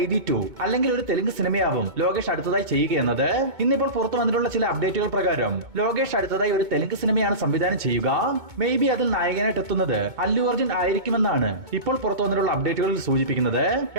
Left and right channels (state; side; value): late; left; 2.2 ms